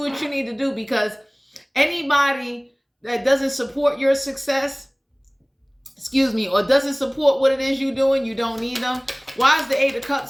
what you need to do, because anybody that doesn't support your success, or doesn't support what it is you're doing, you don't need them. Why is the 8 of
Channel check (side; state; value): both; identical; correlation 1.00